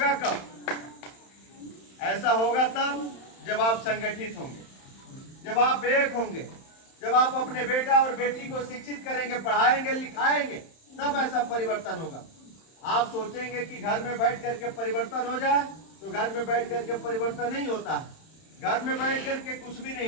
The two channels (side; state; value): right; late; 31 ms